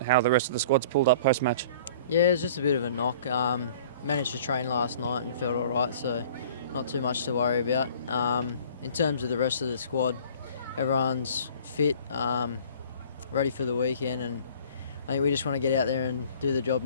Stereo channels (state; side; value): inverted; both; correlation -0.49